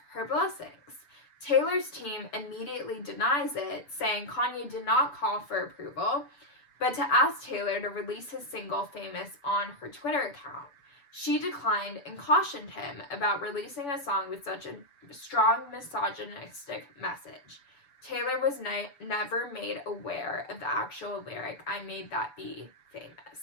her blessings. Taylor's team immediately denies it, saying Kanye did not call for approval, but to ask Taylor to release his single Famous on her Twitter account. She declined and cautioned him about releasing a song with such a strong misogynistic message. Taylor was never made aware of the actual lyric, I made that be famous.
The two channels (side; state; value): right; late; 7.0 ms